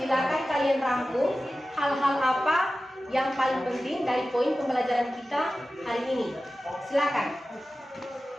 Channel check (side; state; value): both; normal; correlation 0.95